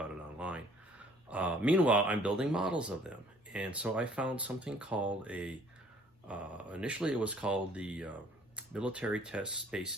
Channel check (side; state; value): both; normal; correlation 0.58